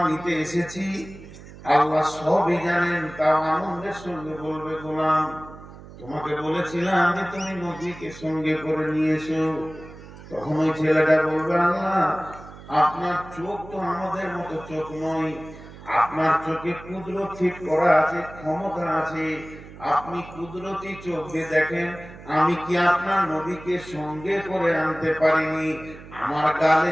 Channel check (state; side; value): noise; right; hum, 17 dB below the sound